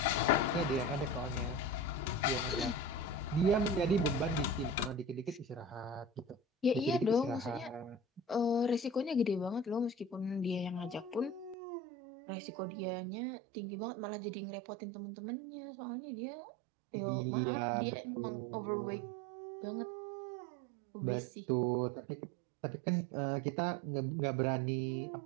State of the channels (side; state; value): left; drops out; at 11.6 s